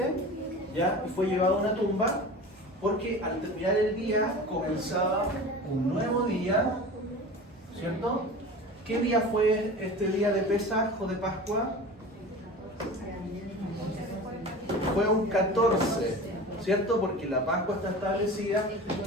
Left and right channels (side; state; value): both; normal; correlation 0.35